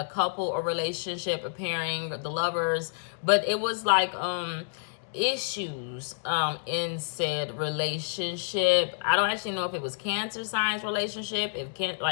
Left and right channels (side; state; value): right; silent; digital silence